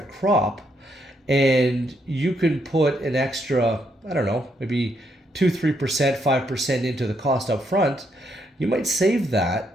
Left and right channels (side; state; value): both; normal; correlation 0.76